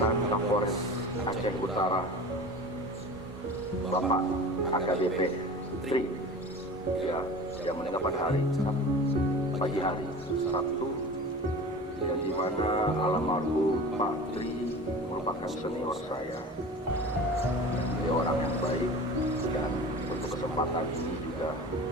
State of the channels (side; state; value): both; normal; correlation 0.36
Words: Kapolres Aceh Utara, Bapak AKBP Tri, yang meninggal pada hari pagi hari Sabtu, dan di mana almarhum Pak Tri merupakan senior saya. Dia orang yang baik, dan untuk kesempatan ini juga